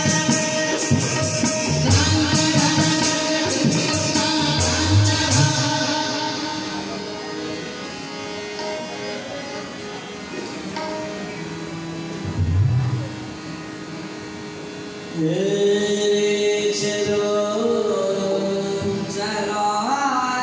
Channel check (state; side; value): identical; both; correlation 1.00